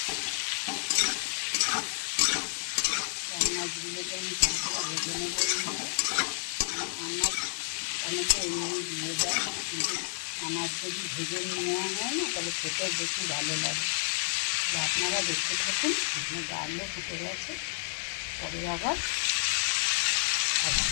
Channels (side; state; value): right; silent; 57 dB below the other